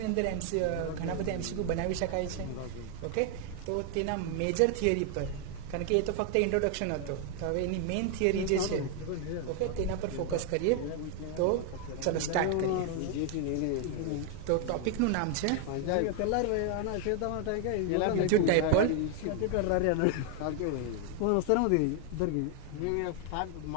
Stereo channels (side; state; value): both; different; correlation 0.00